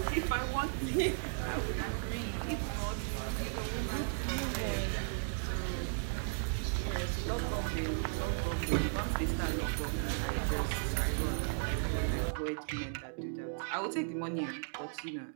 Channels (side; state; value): left; silent; digital silence